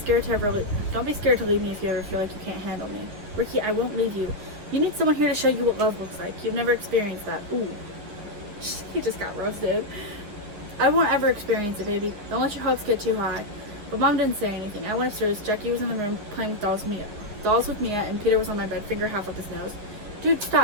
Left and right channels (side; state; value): left; late; 9.9 ms